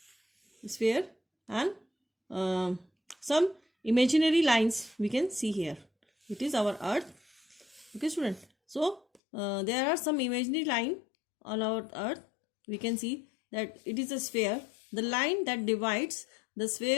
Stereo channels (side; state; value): right; drops out; at 9.2 s